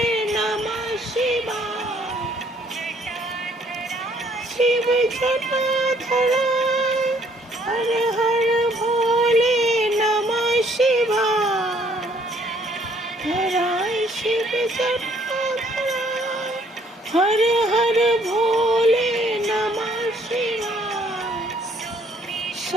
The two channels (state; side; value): normal; both; correlation 0.64